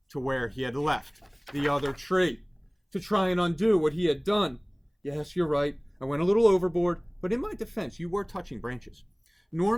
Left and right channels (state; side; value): identical; both; correlation 1.00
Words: to where he had left the other tree to try and undo what he had done. Yes, you're right. I went a little overboard, but in my defense, you were touching branches.